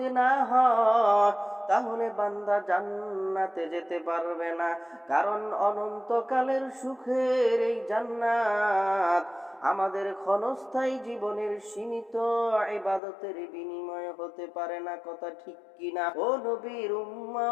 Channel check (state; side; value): drops out; right; at 13.0 s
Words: না হয় তাহলে বান্দা জান্নাতে যেতে পারবে না। কারণ অনন্তকালের সুখের এই জান্নাত আমাদের ক্ষণস্থায়ী জীবনের সীমিত ইবাদতের বিনিময়ে হতে পারে না। কথা ঠিক কিনা? ও নবীর